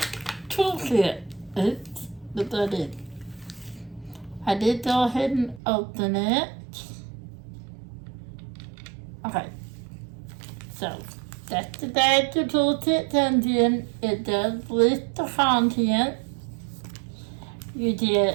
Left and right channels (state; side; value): drops out; left; at 5.6 s